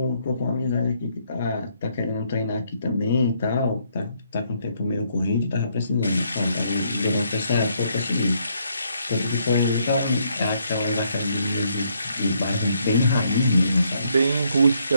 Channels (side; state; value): both; inverted; correlation -0.71